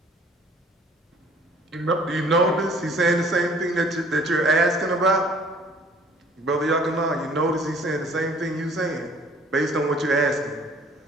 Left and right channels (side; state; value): both; normal; correlation 0.55